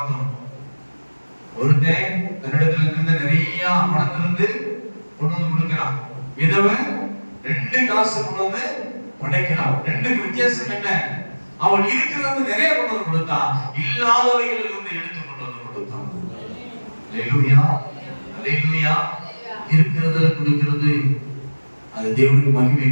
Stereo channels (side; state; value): both; inverted; correlation -1.00